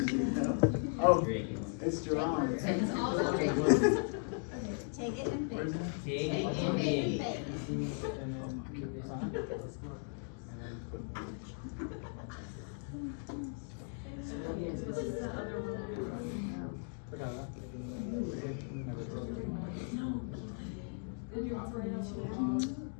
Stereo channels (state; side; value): silent; right; 53 dB below the other